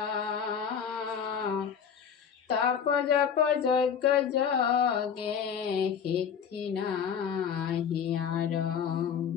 তপ জপ যজ্ঞ যোগে সিদ্ধি নাহিয়ার।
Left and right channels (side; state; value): right; quieter; 7.5 dB